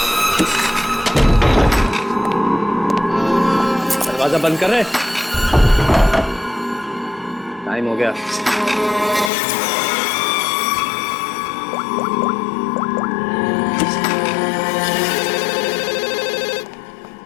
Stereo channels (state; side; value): drops out; right; at 9.3 s